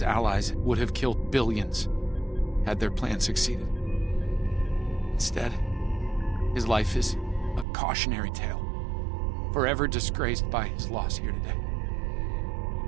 allies would have killed billions had their plan succeeded. Instead, his life is a cautionary tale, forever disgraced by his loss here today.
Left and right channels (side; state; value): left; drops out; at 7.7 s